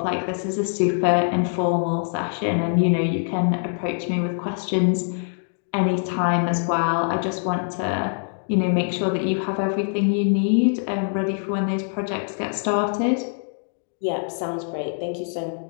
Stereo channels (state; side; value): silent; right; digital silence